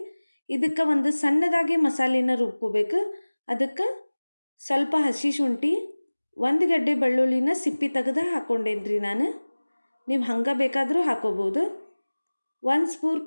ಇದಕ್ಕೆ ಒಂದು ಸಣ್ಣದಾಗಿ ಮಸಾಲೆನ ರುಬ್ಕೋಬೇಕು. ಅದಕ್ಕೆ ಸ್ವಲ್ಪ ಹಸಿ ಶುಂಠಿ, 1 ಗಡ್ಡೆ ಬೆಳ್ಳುಳ್ಳಿನ ಸಿಪ್ಪಿ ತೆಗೆದು ಹಾಕ್ಕೊಂಡೇನಿ ರೀ ನಾನು. ನೀವು ಹಂಗೆ ಬೇಕಾದರೂ ಹಾಕೋಬೋದು. 1 ಸ್ಪೂನ್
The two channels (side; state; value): both; inverted; correlation -1.00